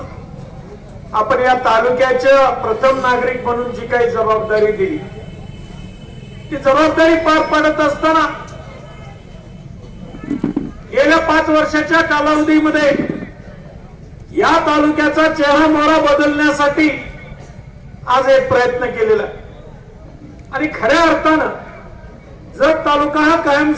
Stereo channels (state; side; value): identical; both; correlation 1.00